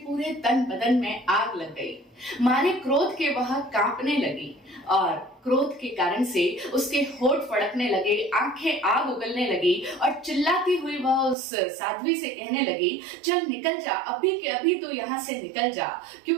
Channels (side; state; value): left; drops out; at 11.4 s